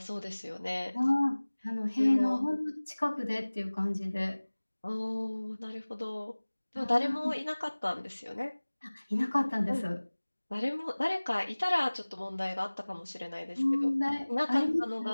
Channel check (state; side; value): inverted; both; correlation -1.00